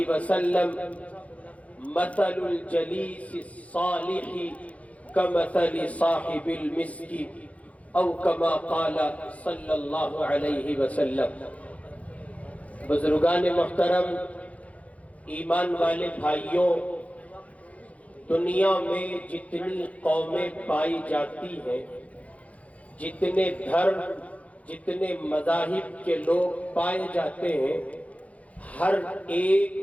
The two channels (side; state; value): right; late; 0.067 ms